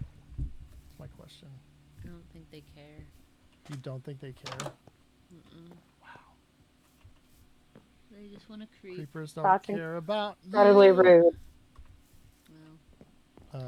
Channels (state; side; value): identical; both; correlation 1.00